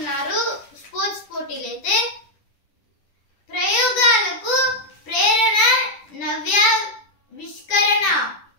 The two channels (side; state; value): right; late; 10 ms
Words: స్పోర్ట్స్ పోటీలు అయితే. ప్రయోగాలకు ప్రేరణ నవ్యావిష్కరణ